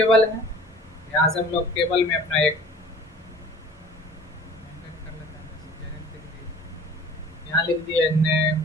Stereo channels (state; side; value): normal; both; correlation 0.46